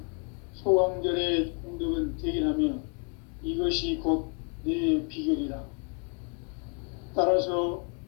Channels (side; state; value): right; quieter; 38.7 dB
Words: 소강절의 공덕은 대견하며 이것이 곧 내 비결이라. 따라서